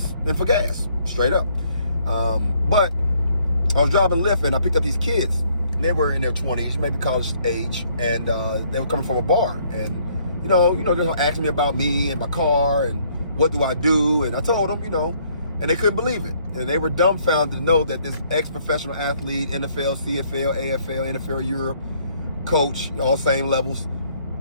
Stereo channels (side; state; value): both; inverted; correlation -0.65